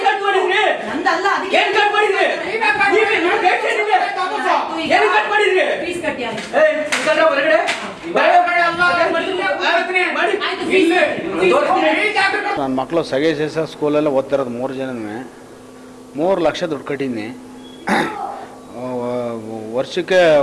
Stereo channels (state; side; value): identical; both; correlation 1.00